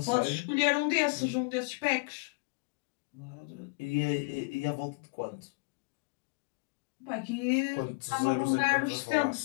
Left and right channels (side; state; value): right; quieter; 30.4 dB